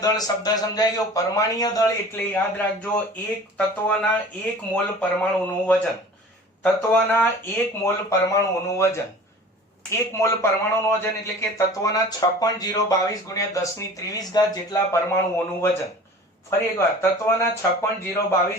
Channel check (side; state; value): both; normal; correlation 0.43